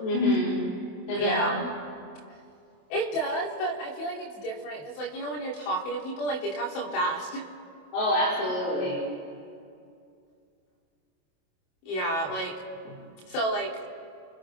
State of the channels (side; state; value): right; late; 27 ms